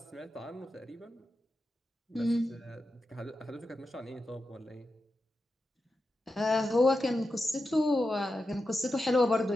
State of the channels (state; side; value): normal; both; correlation 0.90